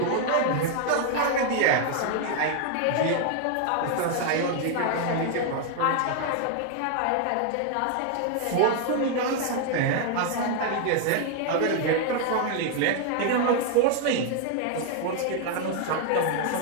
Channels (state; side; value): different; both; correlation 0.00